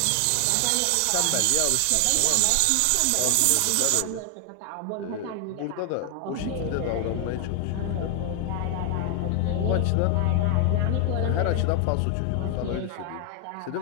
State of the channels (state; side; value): different; both; correlation 0.00